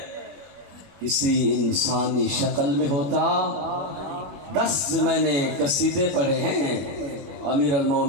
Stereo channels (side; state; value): left; late; 21 ms